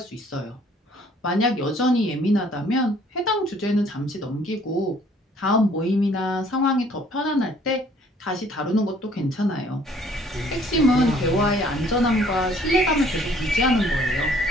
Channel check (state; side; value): normal; both; correlation 0.59